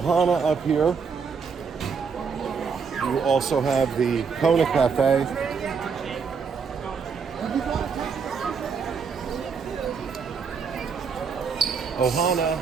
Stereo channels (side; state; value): left; quieter; 5.8 dB